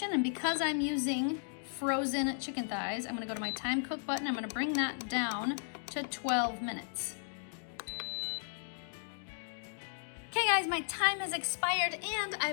and because I'm using frozen chicken thighs, I'm gonna go to my time cook button. I'm gonna bring that down to 12 minutes. Okay guys, my time has expired and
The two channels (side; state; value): right; silent; digital silence